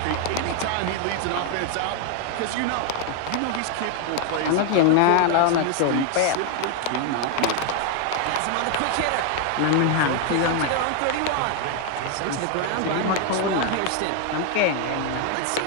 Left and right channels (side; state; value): both; different; correlation 0.01